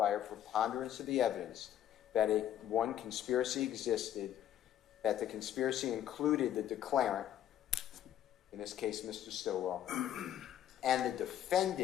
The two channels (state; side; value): quieter; right; 11.2 dB